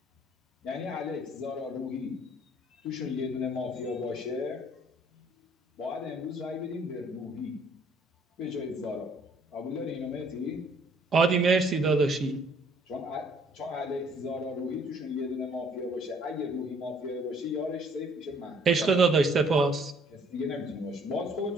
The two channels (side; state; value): both; normal; correlation 0.61